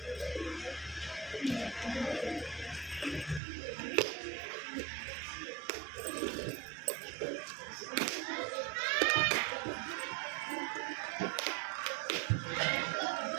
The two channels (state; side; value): drops out; left; at 3.4 s